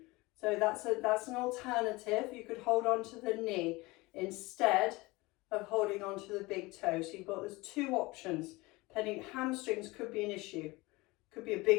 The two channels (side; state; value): right; quieter; 22.4 dB